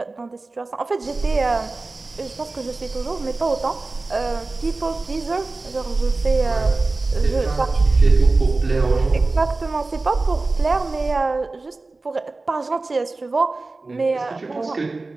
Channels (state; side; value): quieter; left; 3.4 dB